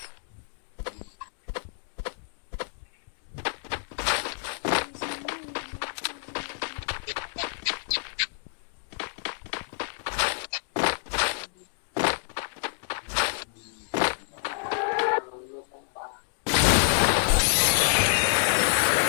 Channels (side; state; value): right; silent; digital silence